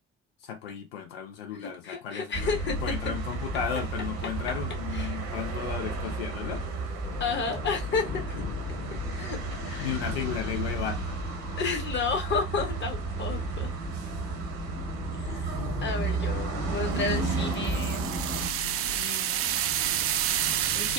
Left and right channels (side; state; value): both; normal; correlation 0.22